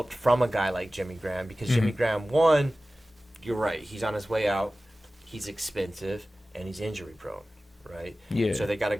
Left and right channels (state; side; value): normal; both; correlation 0.96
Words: from a guy like Jimmy Graham because Jimmy Graham, one, you're right, he's on his way out, he's expensive, and he's injury prone, right? Yeah. So they got a